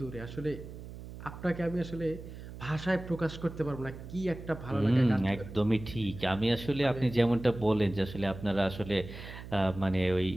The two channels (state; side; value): noise; right; hum, 13 dB below the sound